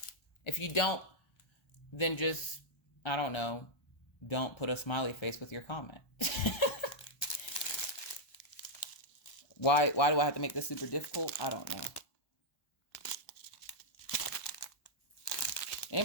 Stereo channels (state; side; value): late; right; 1.3 ms